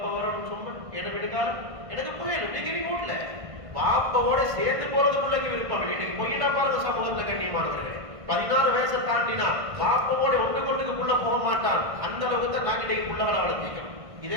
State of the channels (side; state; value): left; late; 1.5 ms